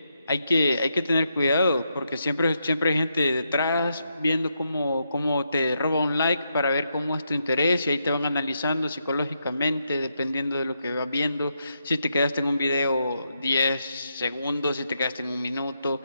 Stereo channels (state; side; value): inverted; both; correlation -0.82